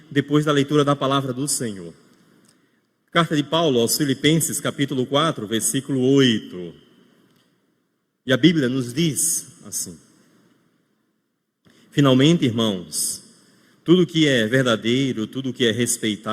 depois da leitura da palavra do Senhor. Carta de Paulo aos Filipenses, capítulo 4, versículo 8. E a Bíblia nos diz assim: finalmente, irmãos, tudo que é verdadeiro, tudo que é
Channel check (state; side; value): identical; both; correlation 1.00